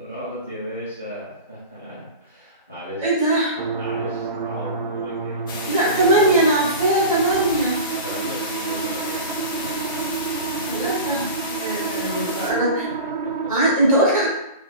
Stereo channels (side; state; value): both; inverted; correlation -0.30